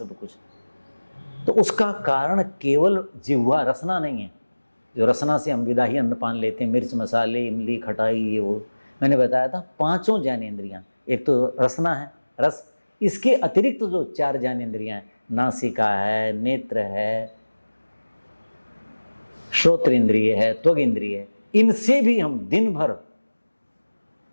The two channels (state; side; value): inverted; both; correlation -1.00